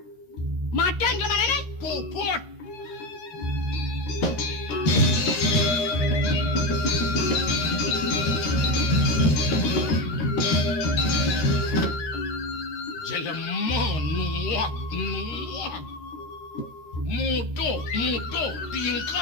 Matian ke mana nih? puput jelema nuak muduh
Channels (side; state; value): right; late; 13 ms